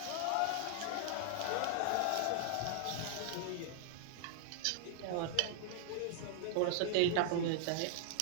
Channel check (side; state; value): both; different; correlation -0.01